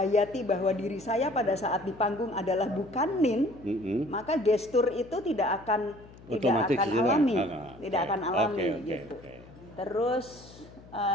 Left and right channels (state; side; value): noise; left; hum, 21 dB below the sound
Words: bahwa diri saya pada saat di panggung adalah bukan Nin, maka gestur itu tidak akan alami, akan alami gitu. Terus